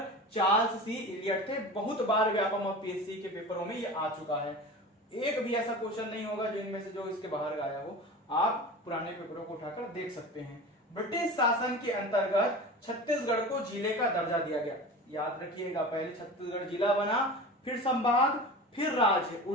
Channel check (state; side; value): normal; both; correlation 0.33